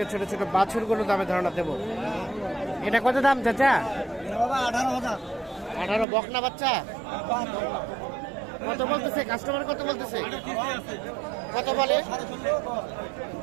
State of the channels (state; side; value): drops out; left; at 6.1 s